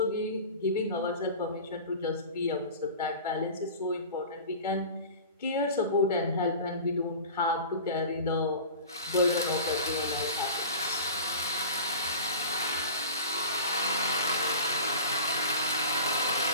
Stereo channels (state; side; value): inverted; both; correlation -0.37